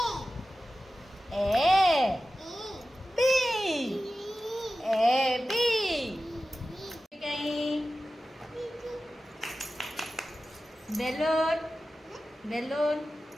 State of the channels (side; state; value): both; normal; correlation 0.94